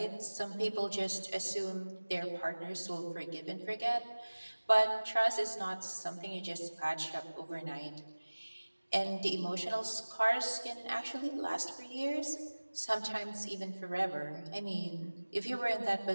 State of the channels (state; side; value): inverted; both; correlation -1.00